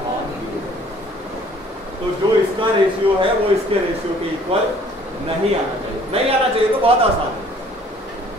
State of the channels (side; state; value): both; normal; correlation 0.56